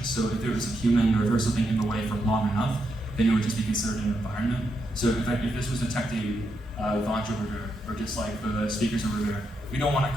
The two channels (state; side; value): normal; both; correlation 0.82